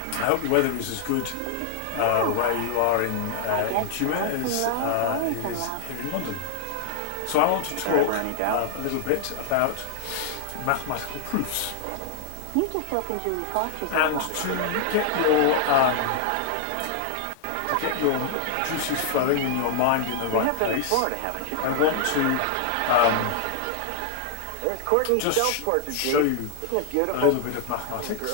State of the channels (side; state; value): both; different; correlation 0.00